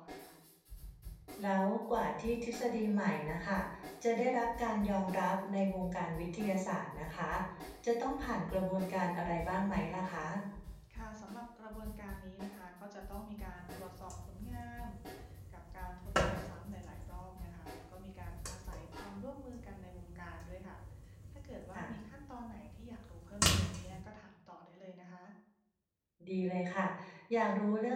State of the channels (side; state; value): both; identical; correlation 1.00